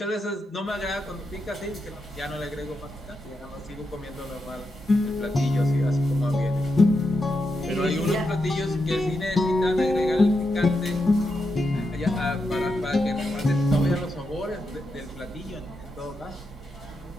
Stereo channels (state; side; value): normal; both; correlation 0.85